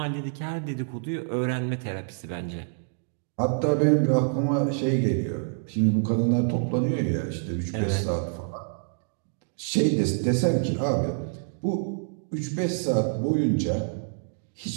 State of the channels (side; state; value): left; silent; digital silence